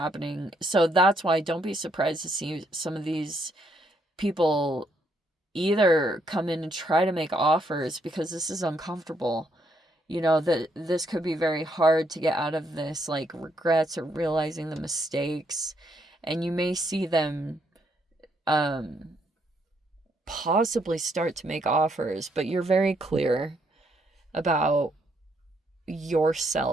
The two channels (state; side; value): normal; both; correlation 0.73